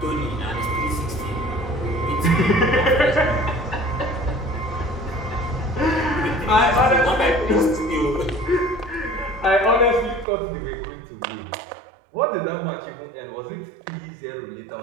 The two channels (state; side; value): drops out; left; at 10.2 s